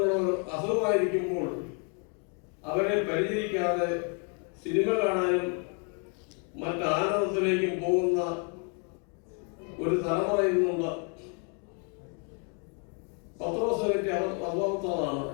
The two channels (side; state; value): right; quieter; 39.1 dB